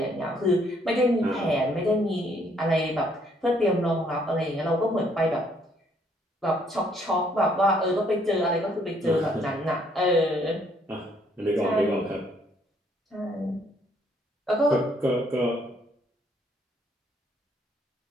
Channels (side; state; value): both; normal; correlation 0.67